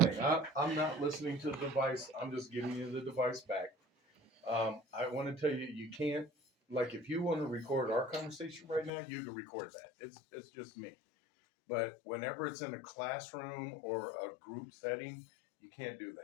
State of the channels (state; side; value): drops out; right; at 8.9 s